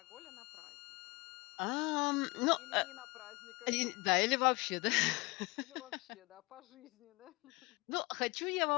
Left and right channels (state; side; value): quieter; right; 24.5 dB